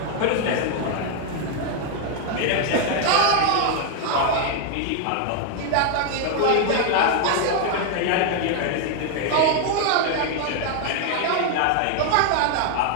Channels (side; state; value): both; different; correlation 0.00